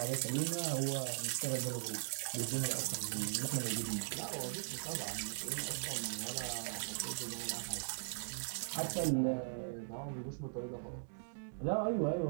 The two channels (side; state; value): left; silent; digital silence